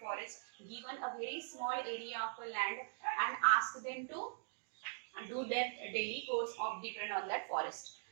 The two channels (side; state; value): left; silent; digital silence